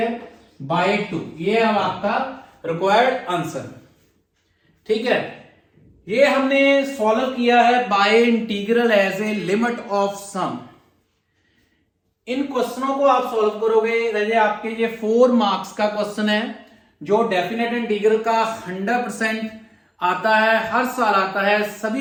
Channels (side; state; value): both; identical; correlation 1.00